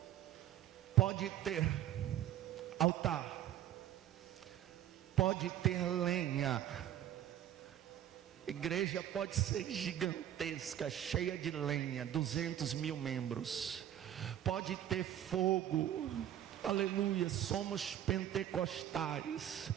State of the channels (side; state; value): left; quieter; 11.6 dB